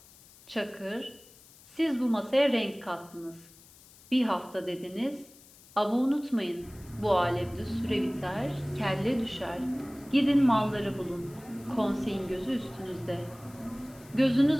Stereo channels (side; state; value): left; noise; hiss, 24 dB below the sound